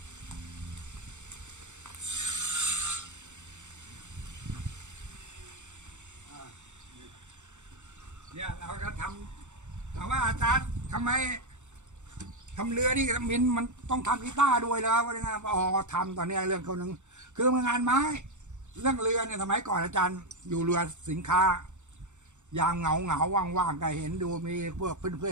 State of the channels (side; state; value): left; late; 0.84 ms